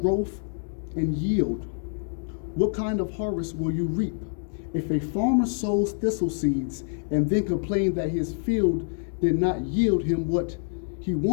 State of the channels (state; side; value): silent; right; digital silence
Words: and yield, what kind of harvest will you reap? If a farmer sows thistle seeds and then complains that his field did not yield him what he